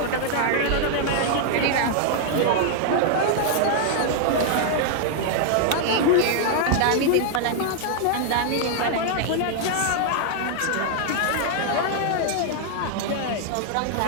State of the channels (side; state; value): both; different; correlation -0.01